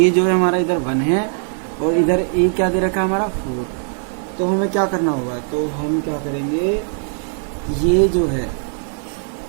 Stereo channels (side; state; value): left; silent; 61 dB below the other